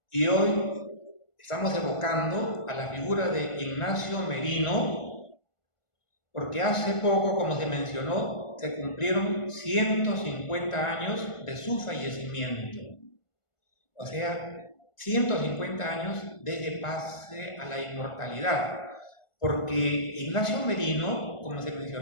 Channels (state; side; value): late; right; 1.5 ms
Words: Y hoy estamos evocando a la figura de Ignacio Merino, porque hace poco, como se mencionó, se cumplieron 150 años de su fallecimiento. O sea, 150 años desde pase a la inmortalidad, porque Ignacio Merino, como se